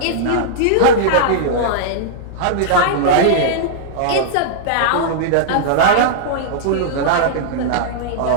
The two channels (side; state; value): both; different; correlation -0.02